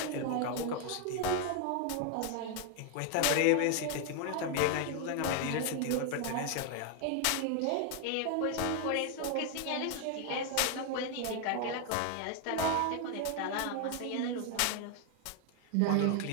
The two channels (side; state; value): both; different; correlation 0.00